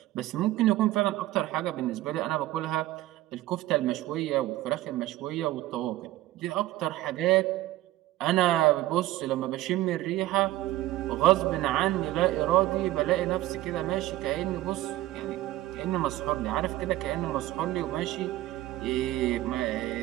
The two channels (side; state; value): left; quieter; 16.1 dB